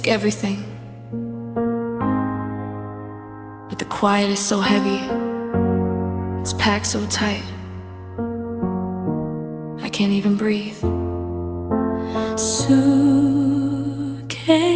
took everything, but the quiet is so heavy. It's packed so tight, I can't even breathe. Suitcases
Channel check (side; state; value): both; identical; correlation 1.00